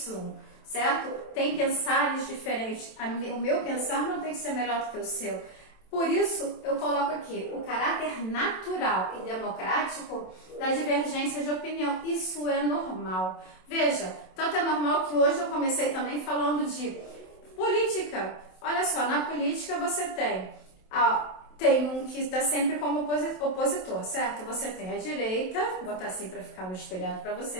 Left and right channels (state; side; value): late; right; 27 ms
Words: certo? Tem pensares diferentes. O meu pensar não tem que ser melhor do que o seu. Por isso, eu coloco aqui o caráter natural e democrático da divergência de opinião. Isso é normal. Veja, tanto é normal que hoje eu comecei também falando de política. Olha só, na política você tem um que está sempre como opositor, certo? Você tem a direita, vou botar assim para ficar no espelhado para